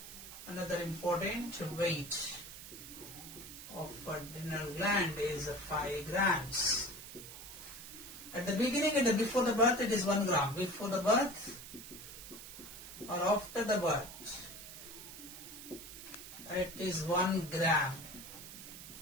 Another important weight of adrenal gland is 5 grams. At the beginning and before the birth it is 1 gram. Before the birth or after the birth it is 1 gram.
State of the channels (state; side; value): noise; right; hiss, 13 dB below the sound